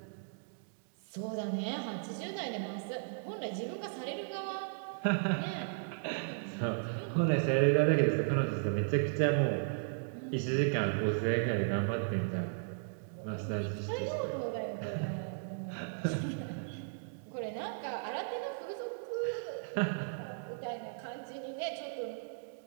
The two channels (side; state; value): left; silent; digital silence